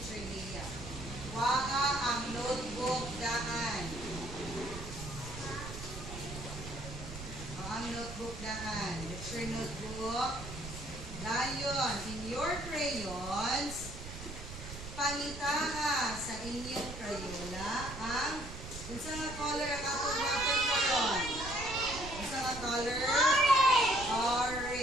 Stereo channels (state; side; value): noise; right; rumble, 10 dB below the sound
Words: Leah. Waka ang notebook daan. Ang notebook daan. Lecture notebook. Dayon, in your crayons, pangitaha sa inyong crayola ang unsa nga color ang atong natin karon? Unsa nga color?